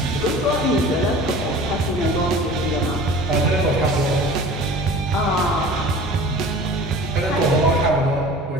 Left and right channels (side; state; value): both; normal; correlation 0.41